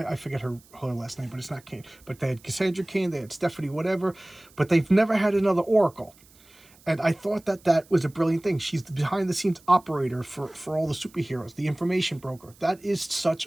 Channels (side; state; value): right; noise; hiss, 27 dB below the sound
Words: forget her last name, but it's not Kane. But they had Cassandra Kane, they had Stephanie whatever, but they've never had another Oracle. And I thought that was a brilliant thing. She's the behind-the-scenes operator for all the superheroes, the information broker. That is such